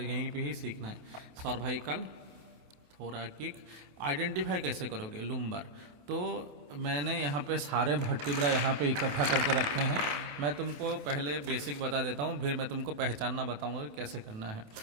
पे ही सीखना है। सर्वाइकल, थोरैकिक, आइडेंटिफाई कैसे करोगे, लुम्बर। तो मैंने यहाँ पे सारे वर्टिब्रा यहाँ पे इकट्ठा करके रखे हैं। मैं तुमको पहले बेसिक बता देता हूँ, फिर मैं तुमको पहचानना बताऊँगा कि कैसे करना है।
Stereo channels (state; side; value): late; left; 28 ms